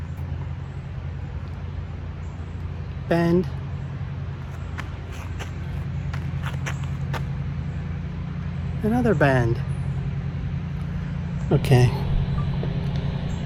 Bend. Another bend. Okay.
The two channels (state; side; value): identical; both; correlation 1.00